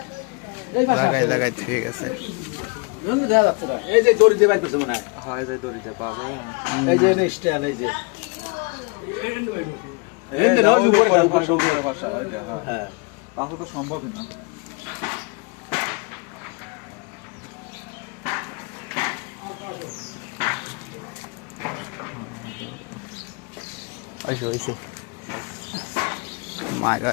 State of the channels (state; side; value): quieter; right; 29.6 dB